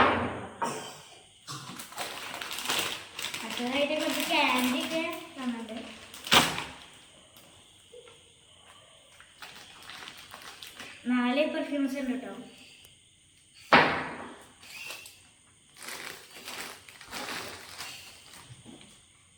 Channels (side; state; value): both; identical; correlation 1.00